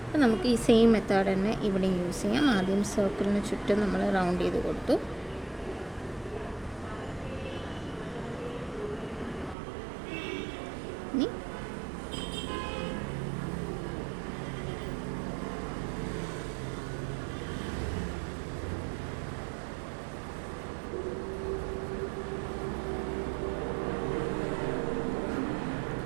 അപ്പോൾ നമുക്ക് ഈ സെയിം മെത്തേഡ് തന്നെ ഇവിടെ യൂസ് ചെയ്യാം. ആദ്യം സർക്കിളിന് ചുറ്റും നമ്മൾ റൗണ്ട് ചെയ്ത് കൊടുത്തു. ഇനി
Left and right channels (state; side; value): drops out; left; at 9.6 s